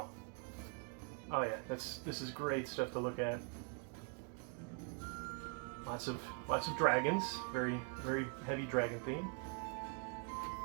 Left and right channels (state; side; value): quieter; left; 35.2 dB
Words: Oh yeah, this is great stuff to look at. Lots of dragons, very heavy dragon theme.